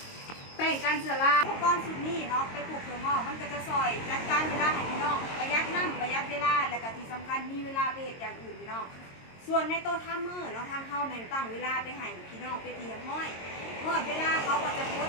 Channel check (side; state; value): right; late; 22 ms